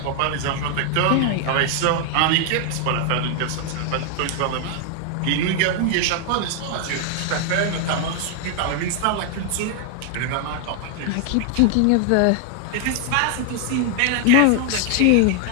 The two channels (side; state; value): both; different; correlation 0.00